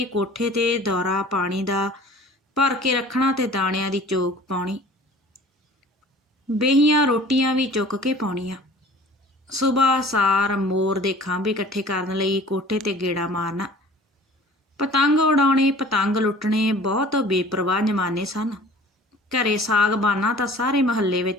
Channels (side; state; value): both; normal; correlation 0.47